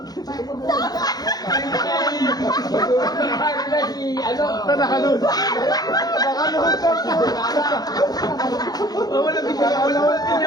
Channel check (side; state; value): right; late; 0.19 ms